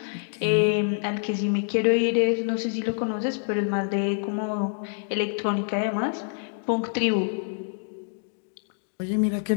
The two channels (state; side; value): silent; right; digital silence